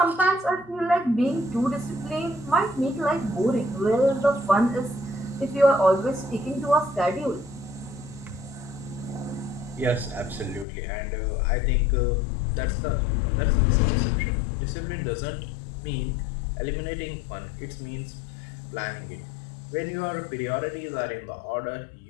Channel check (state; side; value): drops out; right; at 10.7 s